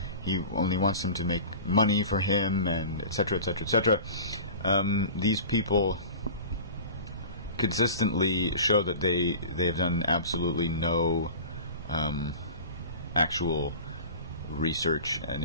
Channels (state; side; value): inverted; both; correlation -0.37